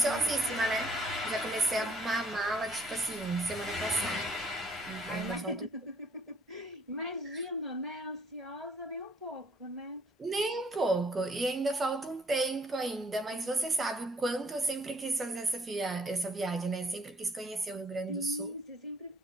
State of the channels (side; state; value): both; normal; correlation 0.63